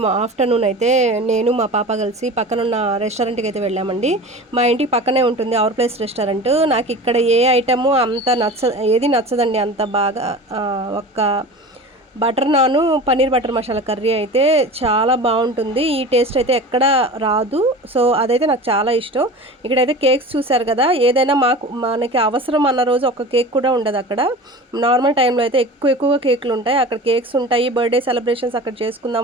ఆఫ్టర్నూన్ అయితే నేను మా పాప కలిసి పక్కనున్న రెస్టారెంట్కి అయితే వెళ్ళామండి. మా ఇంటికి పక్కనే ఉంటుంది అవర్ ప్లేస్ రెస్టారెంట్. నాకు ఇక్కడ ఏ ఐటము అంత ఏది నచ్చదండి అంత బాగా. ఒక్క బటర్ నాను పన్నీర్ బటర్ మసాలా కర్రీ అయితే చాలా బాగుంటుంది. ఈ టేస్ట్ అయితే ఎక్కడ రాదు. సో అదైతే నాకు చాలా ఇష్టం. ఇక్కడైతే కేక్స్ చూసారు కదా, ఏదైనా మనకి అవసరం అన్న రోజు ఒక కేక్ కూడా ఉండదు అక్కడ. నార్మల్ టైంలో అయితే ఎక్కువగా కేకులు ఉంటాయి. అక్కడ కేక్స్ ఉంటాయి. బర్త్డే సెలబ్రేషన్స్ అక్కడ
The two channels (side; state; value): both; normal; correlation 0.35